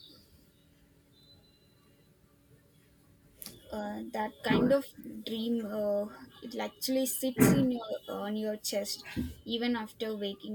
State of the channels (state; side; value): identical; both; correlation 1.00